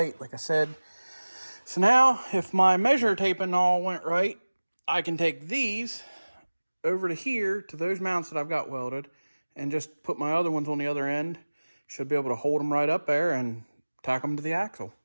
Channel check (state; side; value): inverted; both; correlation -1.00